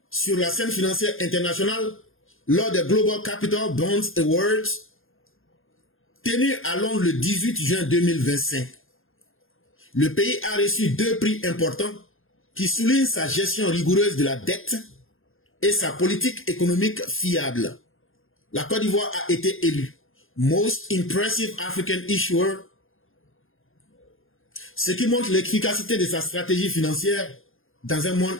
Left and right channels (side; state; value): right; late; 0.60 ms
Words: sur la scène financière internationale lors des Global Capital Bonds Awards tenus à Londres le 18 juin 2025. Le pays a reçu 2 prix importants qui soulignent sa gestion rigoureuse de la dette et sa politique économique fiable. La Côte d'Ivoire a été élue Most Impressive African Issuer, ce qui montre l'efficacité de sa stratégie financière dans un